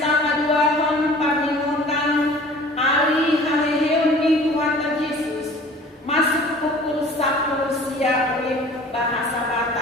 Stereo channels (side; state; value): both; normal; correlation 0.47